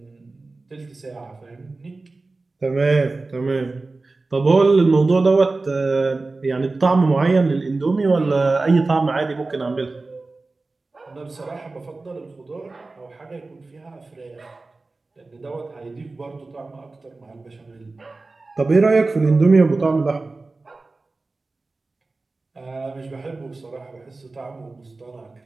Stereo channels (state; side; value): quieter; left; 3.5 dB